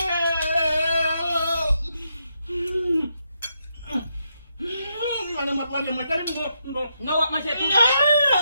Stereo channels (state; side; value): inverted; both; correlation -0.81